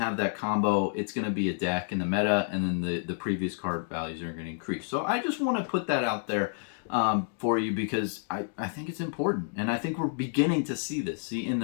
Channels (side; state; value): right; silent; digital silence